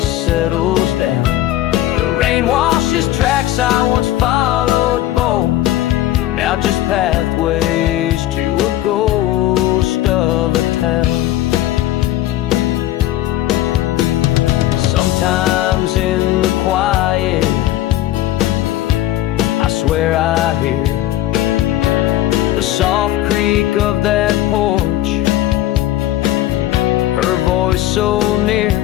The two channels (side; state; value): right; quieter; 14.2 dB